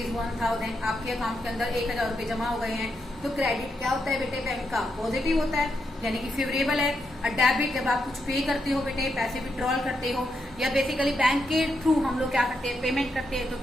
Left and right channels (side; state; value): both; normal; correlation 0.82